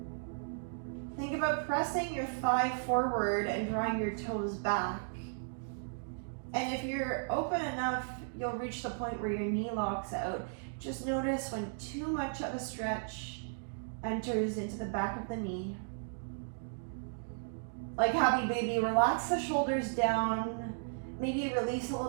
Think about pressing your thigh forward and drawing your toes back. And if you're open enough, you'll reach the point where your knee locks out. Just notice when too much of a stretch enters into the back of the knee. Like happy baby, relax the shoulders down. Maybe release a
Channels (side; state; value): left; silent; digital silence